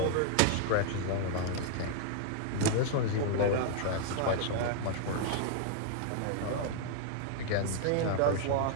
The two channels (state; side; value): different; both; correlation 0.00